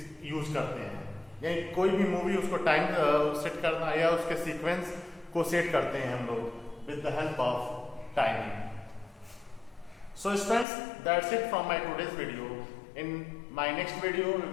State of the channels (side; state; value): right; drops out; at 10.7 s